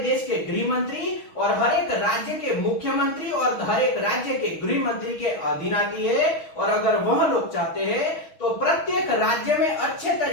के गृह मंत्री और हर एक राज्य के मुख्यमंत्री और हर एक राज्य के गृह मंत्री के अधीन आती है। और अगर वह लोग चाहते हैं तो प्रत्येक राज्य में अच्छे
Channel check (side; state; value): right; late; 6.2 ms